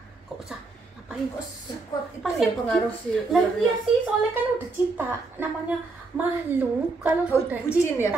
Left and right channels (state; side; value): quieter; left; 3.8 dB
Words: Ngapain kok? Sekuat itu Pasti ya pengaruh sih. Lah ular iya ya. sih, soalnya kan udah cinta. Namanya makhluk kalau Oh, sudah bucin ya,